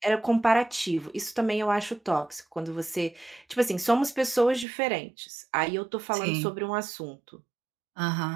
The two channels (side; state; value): left; drops out; at 4.7 s